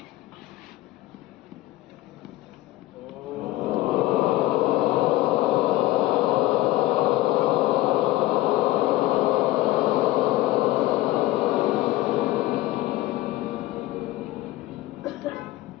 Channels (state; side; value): quieter; right; 17.1 dB